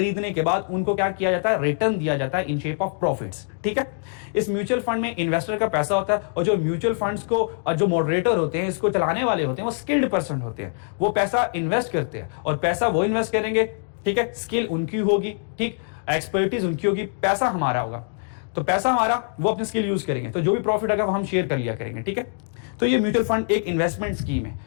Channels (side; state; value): right; silent; digital silence